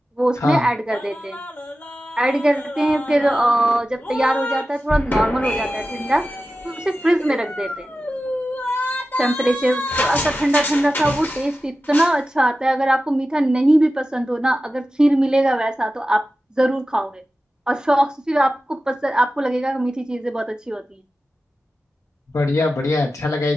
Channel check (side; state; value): both; normal; correlation 0.94